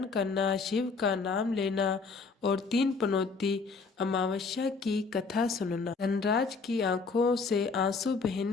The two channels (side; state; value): right; quieter; 4.5 dB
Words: करना, शिव का नाम लेना और 3 पनौती अमावस्या की कथा सुनना। धनराज की आंखों से आंसू